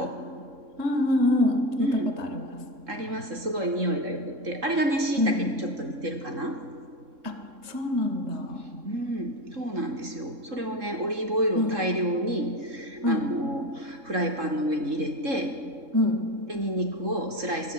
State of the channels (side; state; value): left; late; 3.7 ms